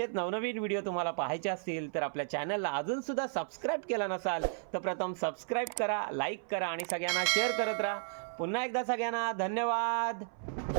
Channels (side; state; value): left; silent; 55 dB below the other